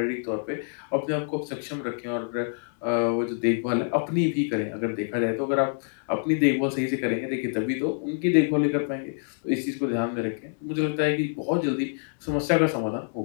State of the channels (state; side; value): silent; right; 61 dB below the other